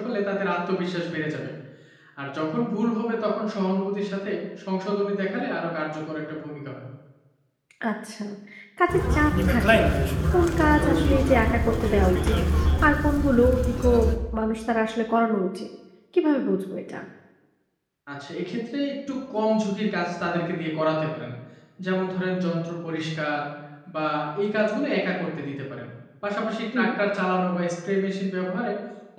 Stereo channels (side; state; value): both; identical; correlation 1.00